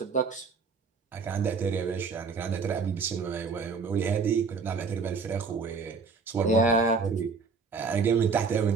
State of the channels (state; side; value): quieter; left; 4.9 dB